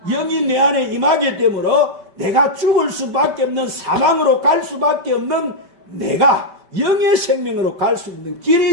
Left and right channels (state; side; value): late; left; 5.1 ms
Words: 내 안에 임하게 되므로 내가 죽을 수밖에 없는 사망으로 갈 수밖에 없는 내가 영의 생명으로 갈 수 있는